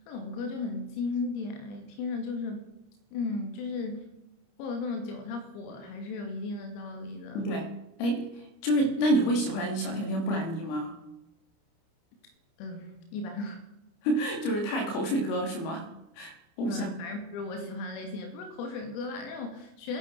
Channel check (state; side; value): late; right; 30 ms